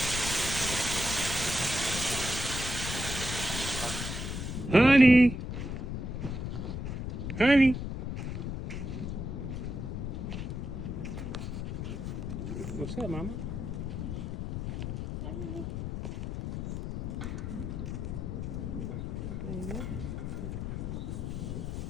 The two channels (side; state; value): left; noise; rumble, 4 dB below the sound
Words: Honey. Honey. What's up, mama?